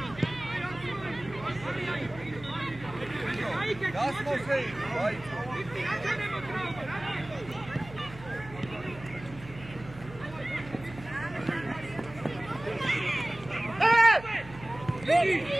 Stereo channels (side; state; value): right; noise; hum, 16 dB below the sound